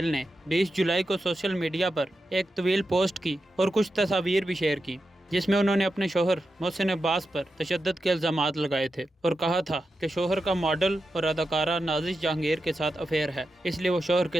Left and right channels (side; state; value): both; normal; correlation 0.89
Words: نے 20 جولائی کو سوشل میڈیا پر ایک طویل پوسٹ کی اور کچھ تصاویر بھی شیئر کی، جس میں انہوں نے اپنے شوہر محسن عباس پر تشدد کے الزامات لگائے تھے اور کہا تھا کہ شوہر کا ماڈل اور اداکارہ نازش جہانگیر کے ساتھ افیئر ہے، اس لیے وہ شوہر